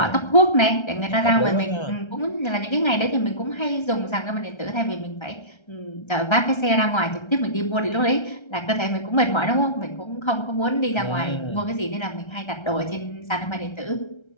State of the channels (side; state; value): right; late; 1.3 ms